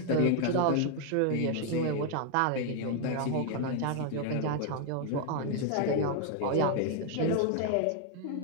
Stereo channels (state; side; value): different; both; correlation 0.00